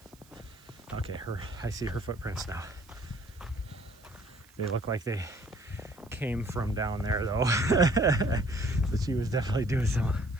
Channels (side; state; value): right; noise; hiss, 27 dB below the sound